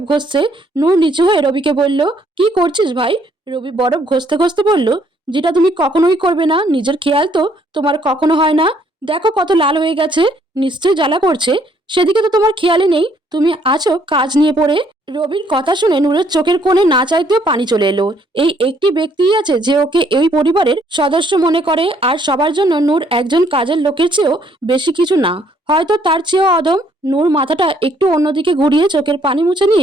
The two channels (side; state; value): both; normal; correlation 0.66